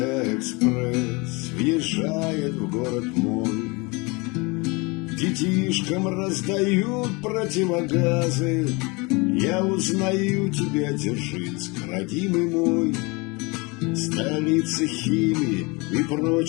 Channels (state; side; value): quieter; right; 27.1 dB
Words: экспресс въезжает в город мой, детишкам раздают противогазы. Я узнаю тебя, Дзержинск, родимый мой, столица химии и